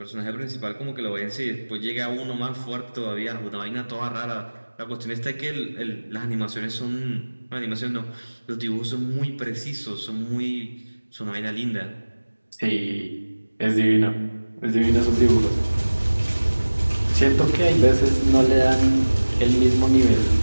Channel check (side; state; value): both; inverted; correlation -1.00